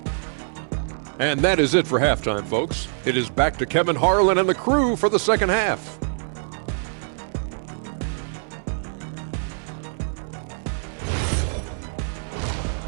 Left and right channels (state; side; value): silent; left; 62 dB below the other